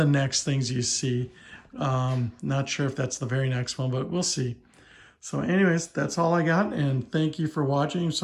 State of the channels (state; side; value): identical; both; correlation 1.00